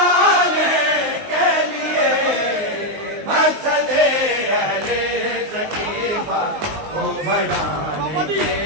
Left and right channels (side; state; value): left; late; 19 ms